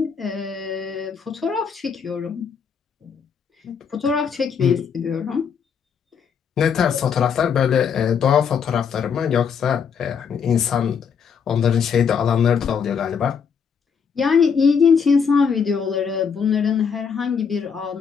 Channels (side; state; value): right; quieter; 6.6 dB